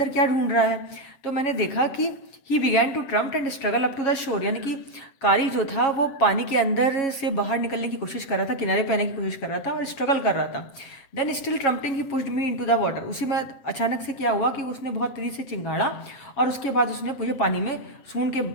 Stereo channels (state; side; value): late; right; 7.3 ms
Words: क्या ढूंढ रहा है। तो मैंने देखा कि he began to tramp and struggle up to the shore, यानी कि कारी जो था वो पानी के अंदर से बाहर निकलने की कोशिश कर रहा था, किनारे पे आने की कोशिश कर रहा था और स्ट्रगल कर रहा था। Then still trumpeting he pushed me into the water. उसी में अचानक से क्या हुआ कि उसने बहुत तेजी से चिंगाड़ा और उसके बाद उसने मुझे पानी में